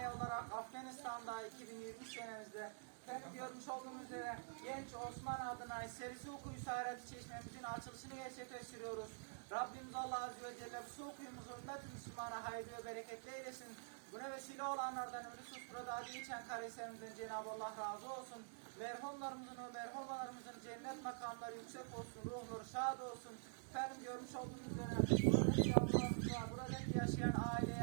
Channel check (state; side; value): silent; left; digital silence